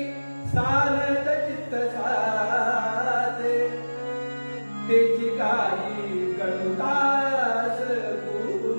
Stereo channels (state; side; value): inverted; both; correlation -1.00